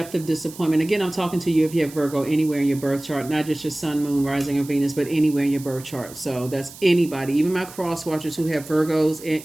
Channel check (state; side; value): noise; right; hiss, 17 dB below the sound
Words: of disappointment. Again, I'm talking to you if you have Virgo anywhere in your birth chart, not just your sun, moon, rising, or Venus, but anywhere in your birth chart. So that's anybody, even my cross watchers who have